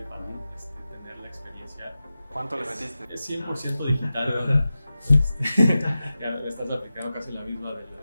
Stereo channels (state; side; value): inverted; both; correlation -0.94